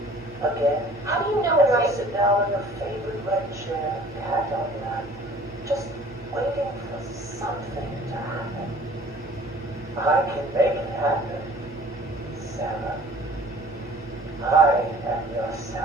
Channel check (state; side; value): noise; right; hum, 21 dB below the sound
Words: Again, How do you know as where you sit down in your favorite red chair, cat on lap, just waiting for something to happen. I can make it happen, Sarah. I am your